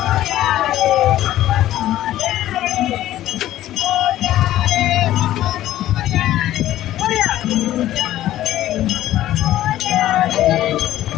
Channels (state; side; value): quieter; right; 13.8 dB